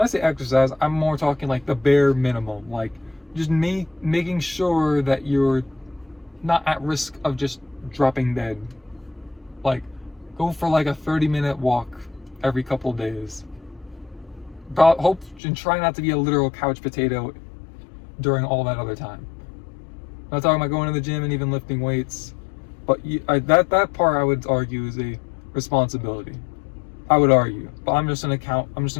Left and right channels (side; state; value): right; drops out; at 15.4 s